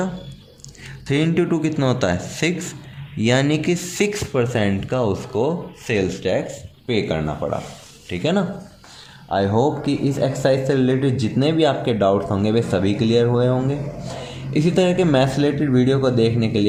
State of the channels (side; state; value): both; identical; correlation 1.00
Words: 3 × 2 कितना होता है, 6। यानी कि 6% का उसको सेल्स टैक्स पे करना पड़ा। ठीक है ना। आई होप कि इस एक्सरसाइज से रिलेटेड जितने भी आपके डाउट्स होंगे वे सभी क्लियर हुए होंगे। इसी तरह के मैथ्स रिलेटेड वीडियो को देखने के